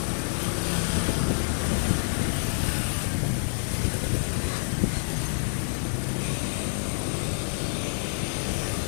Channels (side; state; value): right; silent; 60 dB below the other